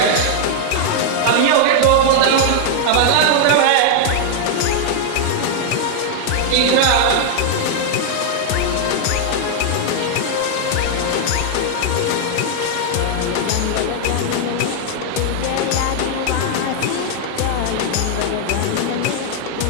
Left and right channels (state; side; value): different; both; correlation 0.00